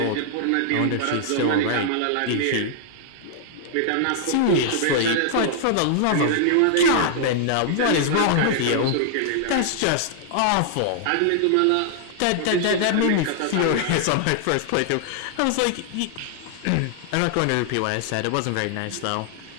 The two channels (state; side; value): different; both; correlation -0.01